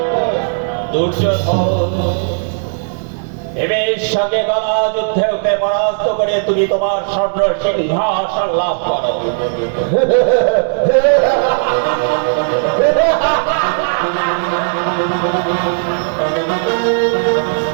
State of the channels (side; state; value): left; silent; digital silence